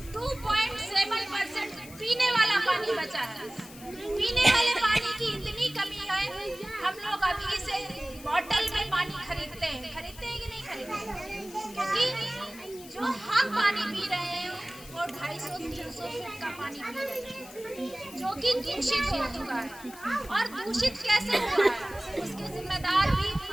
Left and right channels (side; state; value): left; noise; hiss, 18 dB below the sound